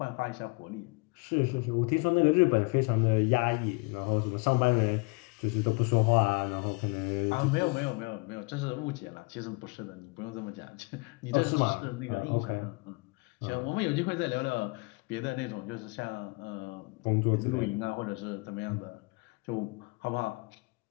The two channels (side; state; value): right; quieter; 28.8 dB